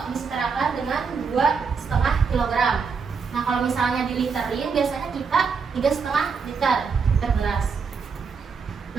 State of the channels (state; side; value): quieter; left; 5.5 dB